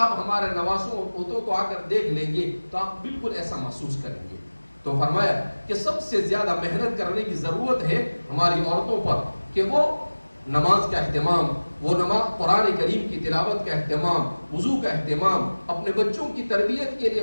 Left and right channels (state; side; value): inverted; both; correlation -1.00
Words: ہمارے نواسوں اور پوتوں کو آ کر دیکھ لیں گے تو آپ بالکل ایسا محسوس کریں گے. تو فرمایا کہ سب سے زیادہ محنت کرنے کی ضرورت ہے ہماری عورتوں پر کہ وہ نماز کا اہتمام، وہ قرآن کریم کی تلاوت کا اہتمام، وضو کا اہتمام، اپنے بچوں کی تربیت کے